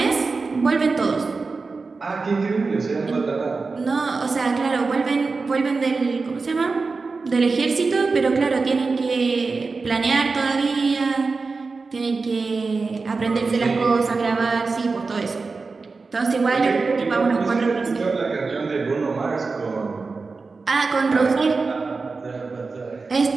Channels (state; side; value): quieter; left; 4.2 dB